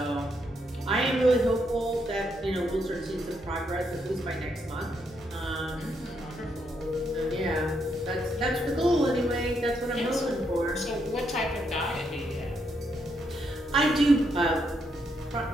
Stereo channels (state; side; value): normal; both; correlation 0.77